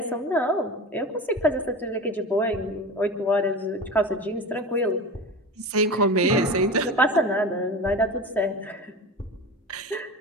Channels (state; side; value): normal; both; correlation 0.30